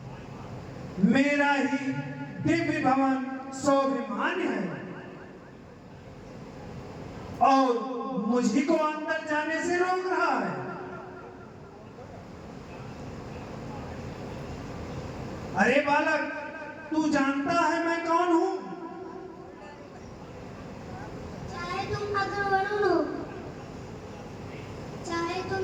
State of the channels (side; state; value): both; identical; correlation 1.00